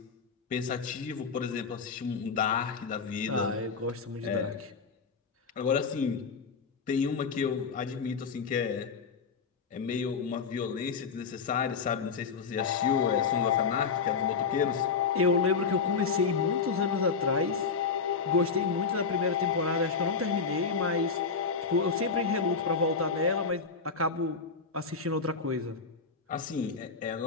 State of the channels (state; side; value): quieter; right; 5.3 dB